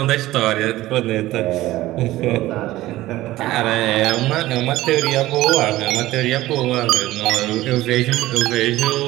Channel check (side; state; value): left; quieter; 16.6 dB